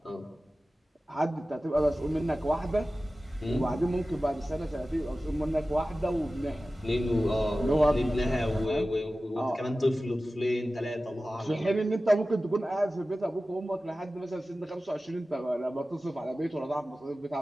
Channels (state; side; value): normal; both; correlation 0.96